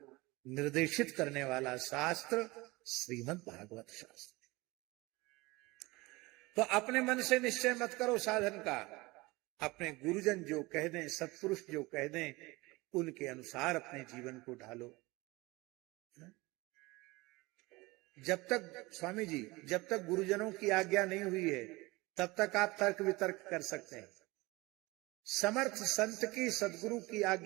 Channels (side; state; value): left; quieter; 22.5 dB